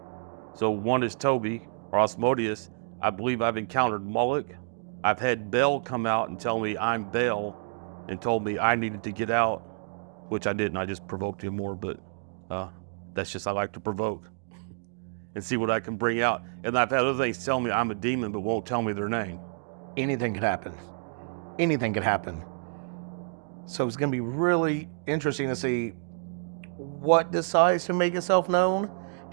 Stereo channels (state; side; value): silent; left; digital silence